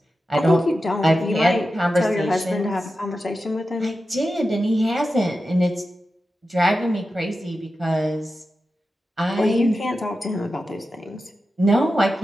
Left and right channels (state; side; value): normal; both; correlation 0.92